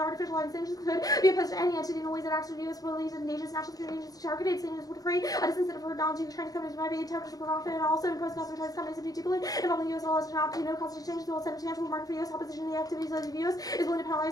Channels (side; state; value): right; late; 0.18 ms